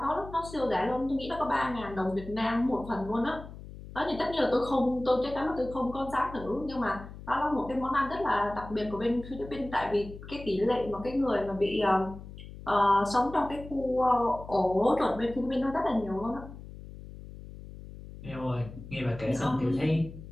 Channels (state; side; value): noise; left; hum, 14 dB below the sound